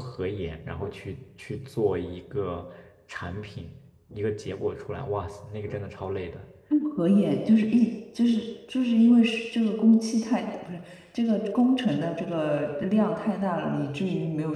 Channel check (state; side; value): identical; both; correlation 1.00